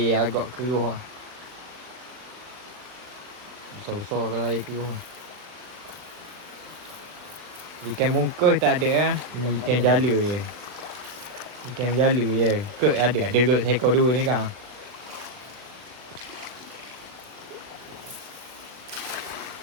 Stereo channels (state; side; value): late; left; 39 ms